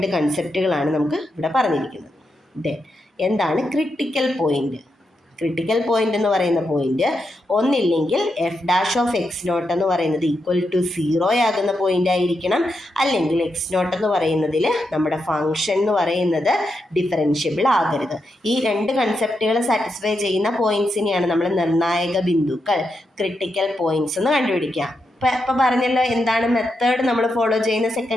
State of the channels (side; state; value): both; normal; correlation 0.85